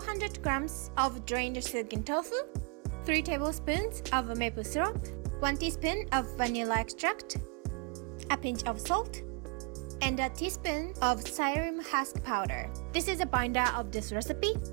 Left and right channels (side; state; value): left; quieter; 35.6 dB